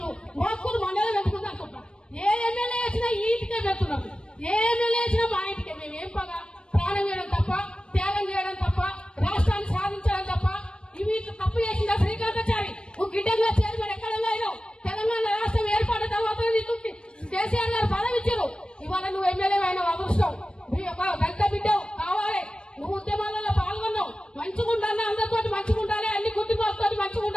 మోక్కులు మండలం ఎందుకుంది అనుకుంటా ఏ ఎమ్మెల్యే వచ్చినా ఈ ఇంటికే పెడుతున్నాం ఏ ఎమ్మెల్యే వచ్చినా మా ఇంటికే మేము ఏం పగా ప్రాణం చేయడం తప్ప త్యాగం చేయడం తప్ప రాష్ట్రాన్ని సాధించడం తప్ప ఇవి తప్పు చేసిందా శ్రీకాంతాచారి నువ్వు గిడ్డంగా చైర్మన్ ఎక్కడంగా అయినావు తెలంగాణ రాష్ట్రం ఏర్పడిన తర్వాత నీకు కేసీఆర్ గారు పదవి ఇచ్చారు ఇవాళ నువ్వు ఎమ్మెల్యే అయిన అదృష్టం ఒక దళిత బిడ్డవు కావాలి నువ్వు ఉద్యమాలలో పాల్గొన్నావు మంచిగుండాలి అందరితో మంచిగుండాలి అన్ని కుటుంబాలతో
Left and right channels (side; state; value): right; late; 0.054 ms